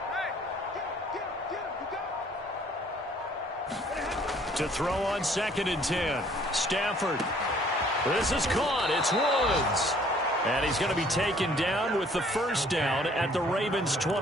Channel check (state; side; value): normal; both; correlation 0.58